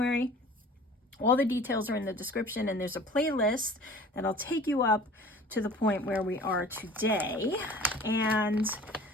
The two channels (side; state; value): both; normal; correlation 0.45